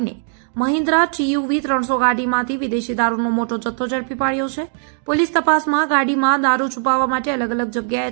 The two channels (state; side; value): silent; left; digital silence